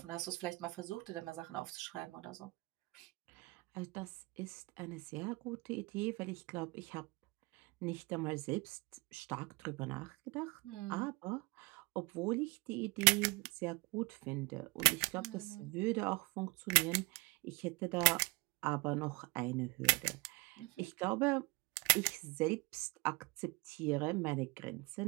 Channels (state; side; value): quieter; left; 25.9 dB